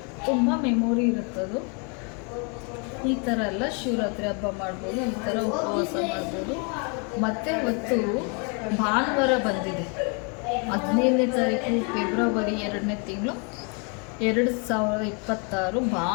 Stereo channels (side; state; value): right; quieter; 35.7 dB